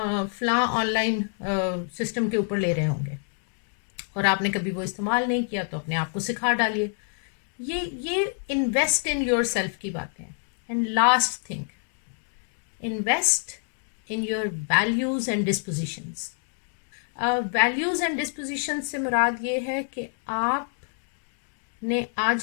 फला ऑनलाइन सिस्टम के ऊपर ले रहे होंगे और आपने कभी वो इस्तेमाल नहीं किया, तो अपने आप को सिखा डालिए। ये इन्वेस्ट इन योर सेल्फ की बातें हैं। And last thing, invest in your values and dispositions. Values and disposition से मुराद ये है कि आपने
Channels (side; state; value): right; silent; 60 dB below the other